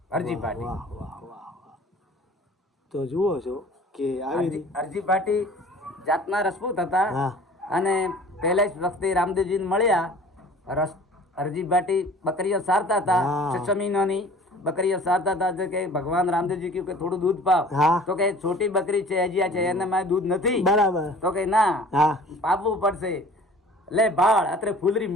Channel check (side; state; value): both; normal; correlation 0.47